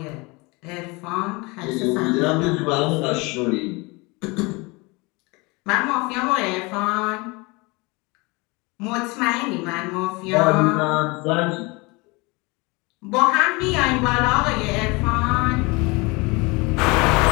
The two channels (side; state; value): right; quieter; 26.1 dB